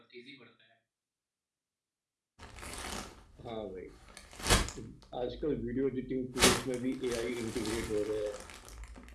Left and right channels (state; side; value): identical; both; correlation 1.00